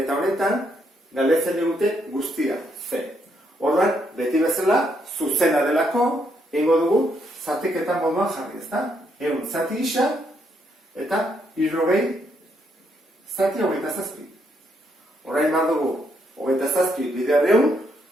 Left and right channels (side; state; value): both; normal; correlation 0.75